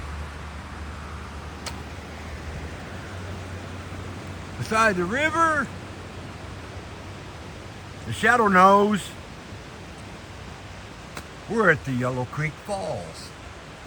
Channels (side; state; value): both; identical; correlation 1.00